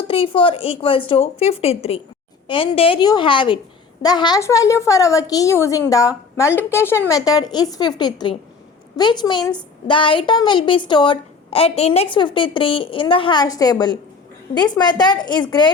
equals to 53. And there you have it. The hash value for our key using the multiplication method is 53, which means the item will be stored at index 53 in the hash table. This method is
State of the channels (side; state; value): right; quieter; 5.1 dB